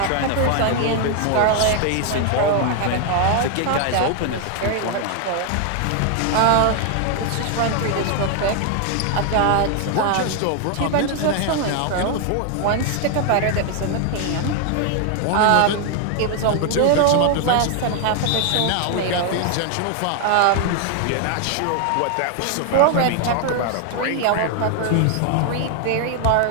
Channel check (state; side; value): different; both; correlation 0.00